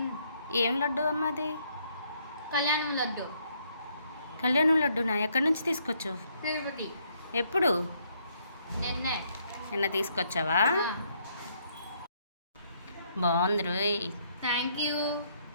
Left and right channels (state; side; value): inverted; both; correlation -0.70